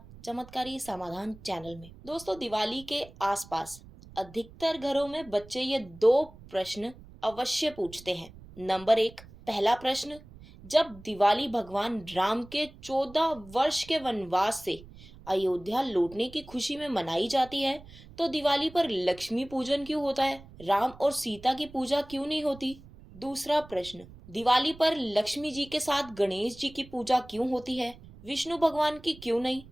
चमत्कारी समाधान चैनल में। दोस्तों, दिवाली के आसपास अधिकतर घरों में बच्चे ये दो प्रश्न अवश्य पूछते हैं। नंबर एक, पहला प्रश्न, जब दिवाली भगवान राम के 14 वर्ष के वनवास से अयोध्या लौटने की खुशी में मनाई जाती है, तो दिवाली पर लक्ष्मी पूजन क्यों होता है? राम और सीता की पूजा क्यों नहीं होती? दूसरा प्रश्न, दिवाली पर लक्ष्मी जी के साथ गणेश जी की पूजा क्यों होती है, विष्णु भगवान की क्यों नहीं?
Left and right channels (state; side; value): noise; right; rumble, 20 dB below the sound